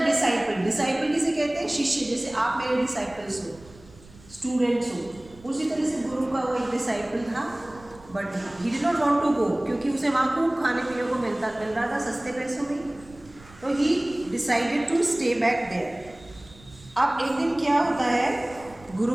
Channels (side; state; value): right; noise; rumble, 23 dB below the sound